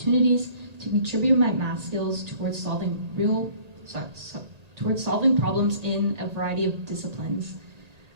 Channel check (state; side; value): late; left; 1.8 ms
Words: to contribute my math skills towards solving problems in a variety of disciplines.